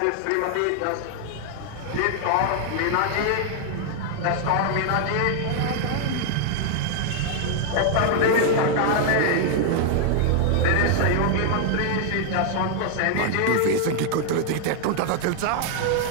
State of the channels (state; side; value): different; both; correlation 0.00